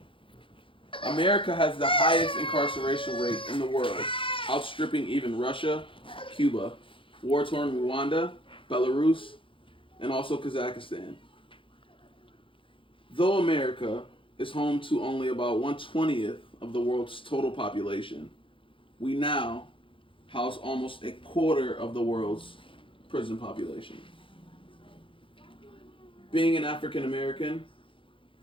America has the highest incarceration rate in the world, outstripping even Russia, Cuba, war-torn Rwanda, Belarus, and also Kazakhstan. Though America is home to only about 1/20th of the world's total population, we now house almost a quarter of the world's prison population. Being an African American,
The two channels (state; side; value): late; right; 0.25 ms